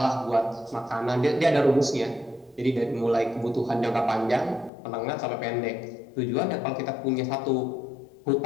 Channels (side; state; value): right; drops out; at 4.7 s